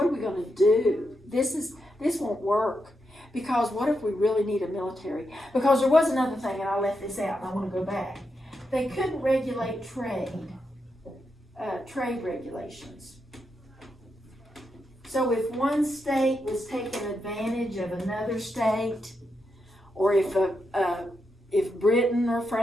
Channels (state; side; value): normal; both; correlation 0.84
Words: are we going to do? This won't work. Because what if we really need a military? Because there was another thing, and I left this out, and I want to go back. They couldn't regulate trade regulations. So if one state was taking advantage of another state, or if if Britain or